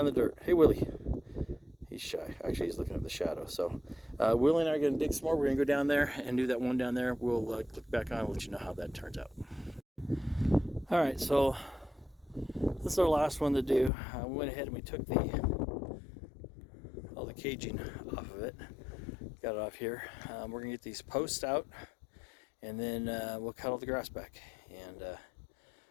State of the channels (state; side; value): drops out; right; at 13.9 s